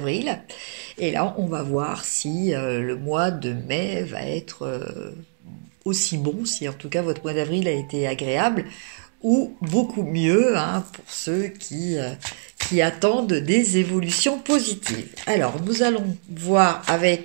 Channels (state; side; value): silent; left; digital silence